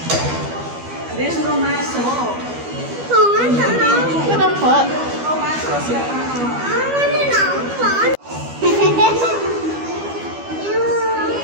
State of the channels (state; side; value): late; left; 12 ms